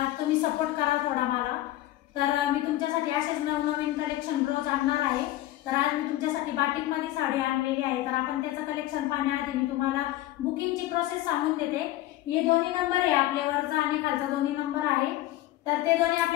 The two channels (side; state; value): right; quieter; 15.3 dB